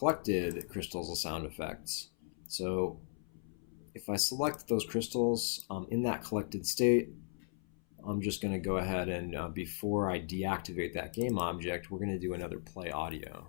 crystals a sound effect. So if I select those crystals in that collected state, I'm just going to go ahead and before I deactivate that game object, we're going to do another play audio.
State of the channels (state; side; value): silent; right; 53 dB below the other